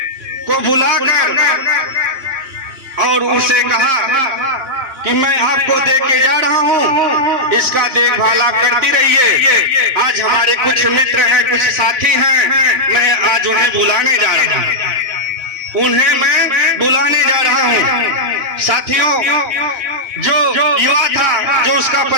को बुलाकर और उसे कहा कि मैं आपको दे के जा रहा हूँ, इसका देखभाल आप करती रहिए। आज हमारे कुछ मित्र हैं, कुछ साथी हैं, मैं आज उन्हें बुलाने जा रहा हूँ। उन्हें मैं बुलाने जा रहा हूँ। साथियों, जो युवा था, जो उसका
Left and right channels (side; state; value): left; late; 2.9 ms